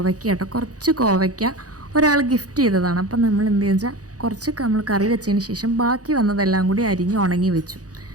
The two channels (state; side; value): late; left; 0.67 ms